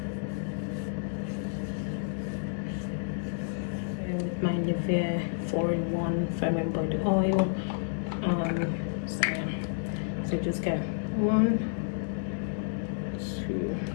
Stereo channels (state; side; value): silent; right; 57 dB below the other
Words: With my Nivea 4-in-1 firming body oil. So just get 1, 2.